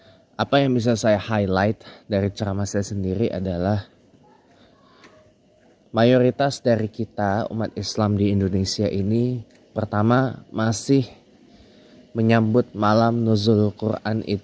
apa yang bisa saya highlight dari ceramah saya sendiri adalah mayoritas dari kita umat Islam di Indonesia ini pertama masih menyambut malam nuzul Quran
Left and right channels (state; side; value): identical; both; correlation 1.00